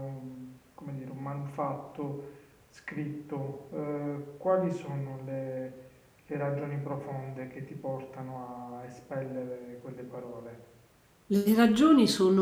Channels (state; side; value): identical; both; correlation 1.00